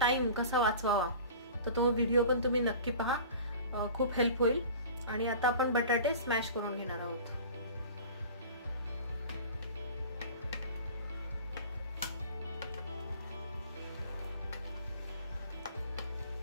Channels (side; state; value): both; inverted; correlation -0.40